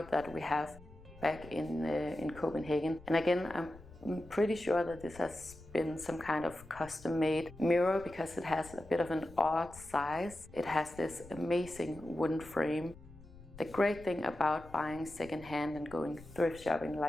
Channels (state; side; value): noise; left; rumble, 19 dB below the sound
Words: that we have back in Copenhagen. And again, I'm pretty sure that this has been some kind of custom-made mirror because it has a bit of an odd size. It has this amazing wooden frame. The great thing about buying secondhand and going thrift shopping